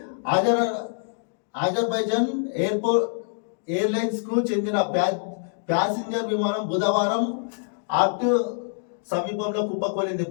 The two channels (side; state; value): right; silent; digital silence